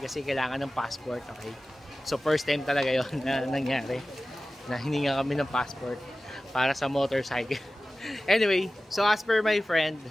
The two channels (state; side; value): normal; both; correlation 0.96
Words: kasi kailangan ng passport, okay? So first time talaga yon na nangyari na hininga kami ng passport para sa motorcycle. Anyway, so as per my friend